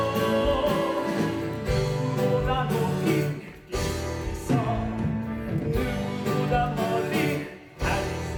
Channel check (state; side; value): identical; both; correlation 1.00